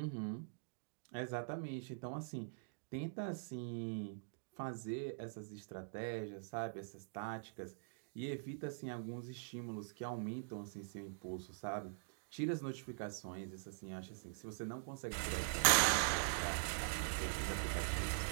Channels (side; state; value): left; silent; digital silence